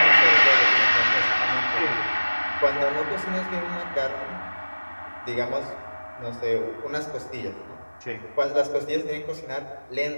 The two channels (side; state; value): both; inverted; correlation -1.00